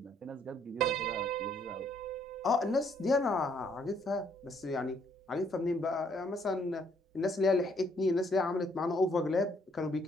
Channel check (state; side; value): normal; both; correlation 0.67